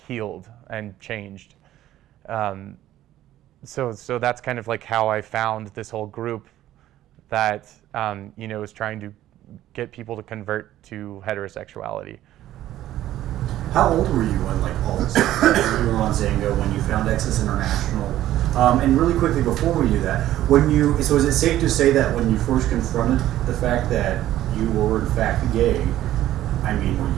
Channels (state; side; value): quieter; left; 13.5 dB